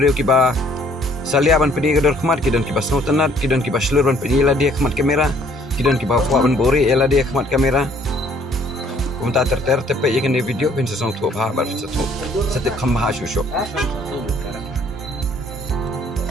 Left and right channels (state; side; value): normal; both; correlation 0.61